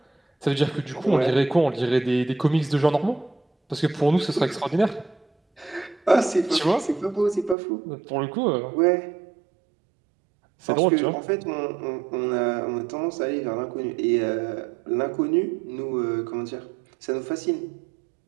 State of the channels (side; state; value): left; drops out; at 7.6 s